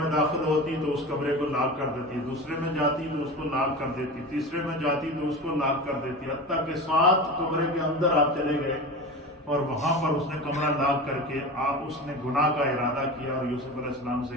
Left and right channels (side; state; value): both; normal; correlation 0.29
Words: داخل ہوتی تو اس کمرے کو لاک کر دیتی، دوسرے میں جاتی تو اس کو لاک کر دیتی، تیسرے میں جاتی تو اس کو لاک کر دیتی، حتیٰ کہ 7 کمرے کے اندر آپ چلے گئے اور وہاں پر اس نے کمرہ لاک کر کے اس نے گناہ کا ارادہ کیا اور یوسف علیہ السلام سے